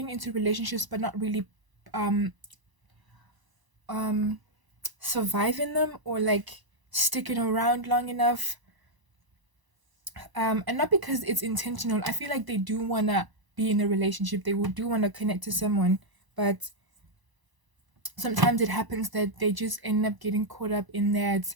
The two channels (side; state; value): left; late; 1.0 ms